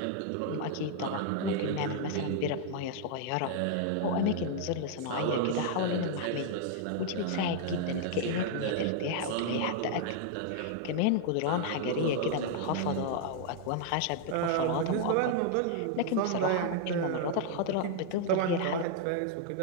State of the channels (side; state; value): both; different; correlation -0.01